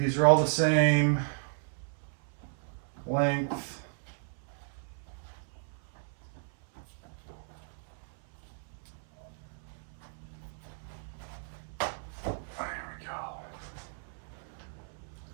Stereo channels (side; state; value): left; silent; 55 dB below the other